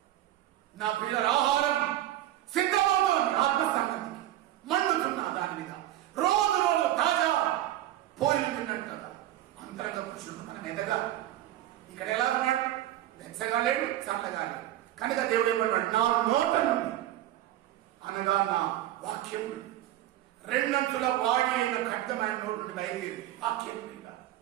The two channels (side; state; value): left; quieter; 13.7 dB